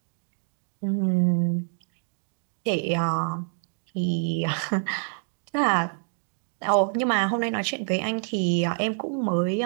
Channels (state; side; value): silent; left; digital silence